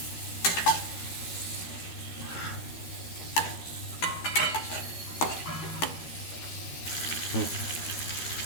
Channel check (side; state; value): right; late; 13 ms